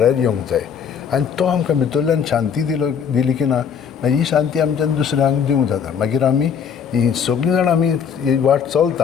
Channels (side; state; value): right; quieter; 7.3 dB